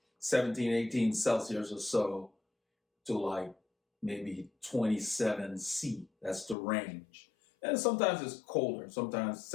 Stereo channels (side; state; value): right; drops out; at 6.6 s